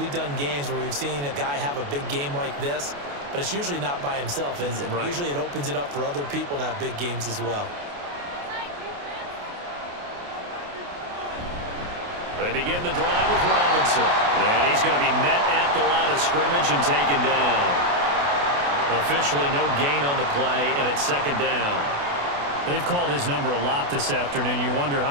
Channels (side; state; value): left; late; 28 ms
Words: done games where we've seen a guy have a big game like this, but it's usually not by himself, is it? Right. Usually it opens it up for other people to have big games as well. They begin the drive with Robinson. And he's going to be met at the line of scrimmage and taken down. Officially no gain on the play, and it's 2nd down. They've called his number a lot this afternoon. You wonder how